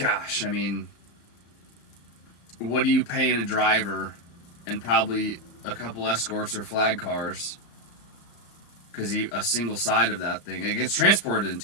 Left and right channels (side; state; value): right; late; 34 ms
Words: I mean, what are you paying a driver and probably a couple escorts or flag cars? Because a single side of that thing, it gets transported in